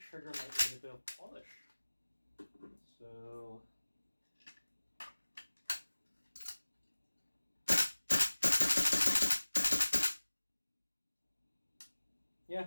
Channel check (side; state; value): both; inverted; correlation -1.00